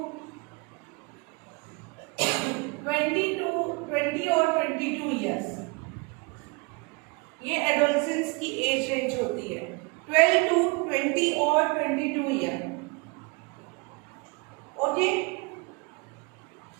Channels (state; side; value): quieter; left; 29.8 dB